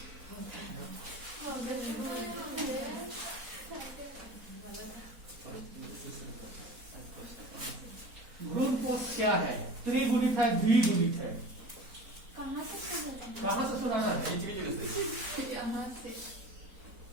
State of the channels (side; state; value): left; late; 4.1 ms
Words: भ्रूणपोष क्या है? त्रिगुणित है, द्विगुणित है? कहाँ से सुनाना है? यहाँ से।